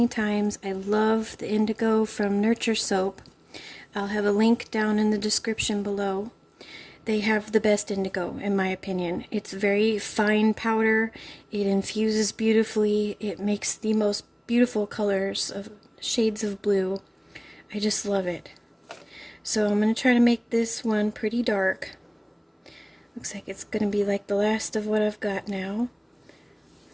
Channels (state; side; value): identical; both; correlation 1.00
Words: times, I love the indigo from Nurture Soap. I'll have a link down in the description below. They have the best indigo, in my opinion. It's very fine powder. It infuses beautifully. It makes the most beautiful colors of shades of blue. I just love it. So I'm going to try to make this one pretty dark. Looks like it's going to be like the last of what I've got now.